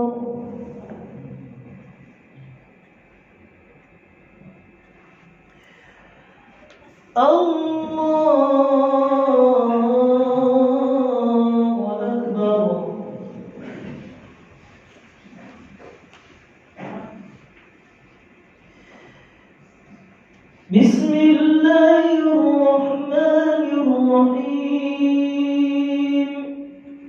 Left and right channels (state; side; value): identical; both; correlation 1.00